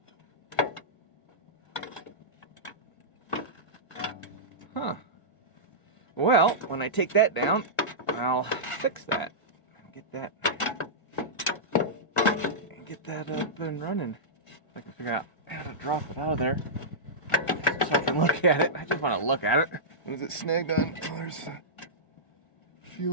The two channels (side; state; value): right; late; 1.6 ms